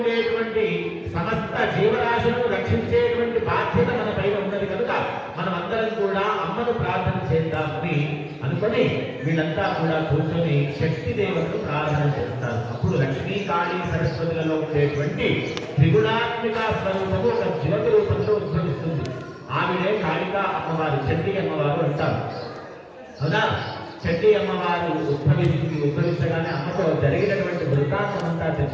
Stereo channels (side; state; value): both; identical; correlation 1.00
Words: సమస్త జీవరాశులను రక్షించేటువంటి బాధ్యత మన పైన ఉన్నది కనుక మనం అందరం కూడా అమ్మను ప్రార్థన చేద్దామని అనుకొని వీళ్ళంతా కూడా కూర్చొని శక్తి దేవతను ప్రార్థన చేస్తారు. అప్పుడు లక్ష్మీ, కాళీ, సరస్వతులలో ఉండేటువంటి త్రిగుణాత్మిక స్వరూపము ఒక జ్యోతి రూపంలో ఉద్భవిస్తుంది. ఆవిడే కాళికా అమ్మవారు, చండీ అమ్మవారు అంటారు. అవునా? చండీ అమ్మవారు ఉద్భవించగానే అమ్మతో జరిగినటువంటి వృత్తాంతం అంతా